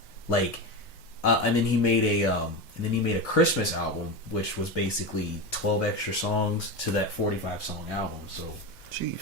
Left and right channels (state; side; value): normal; both; correlation 0.20